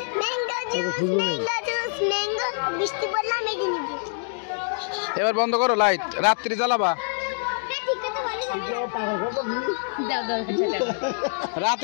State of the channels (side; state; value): right; silent; digital silence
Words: এবার বন্ধ করো লাইট রাত্রি জ্বালাবা